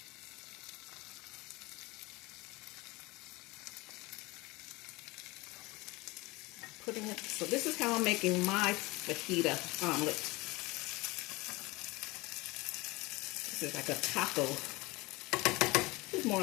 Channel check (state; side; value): quieter; right; 22.8 dB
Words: So this is how I'm making my fajita omelet. This is like a taco. This is more